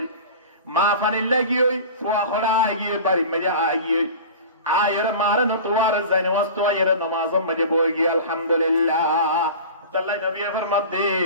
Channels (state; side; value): inverted; both; correlation -0.36